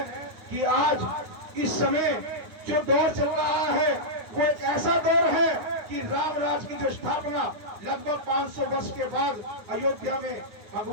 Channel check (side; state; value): left; late; 9.5 ms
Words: कि आज इस समय जो दौर चल रहा है, वो एक ऐसा दौर है कि राम राज की जो स्थापना लगभग 500 वर्ष के बाद अयोध्या में